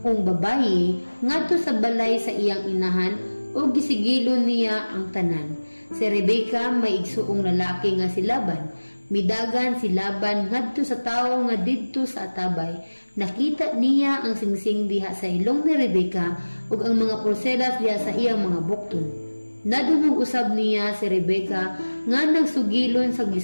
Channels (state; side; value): inverted; both; correlation -1.00